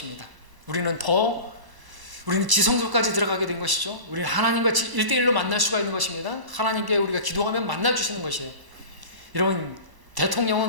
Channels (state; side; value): late; left; 1.0 ms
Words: 우리는 더 우리는 지성소까지 들어가게 된 것이죠. 우리는 하나님과 1대1로 만날 수가 있는 것입니다. 하나님께 우리가 기도하면 만나주시는 것이에요. 여러분,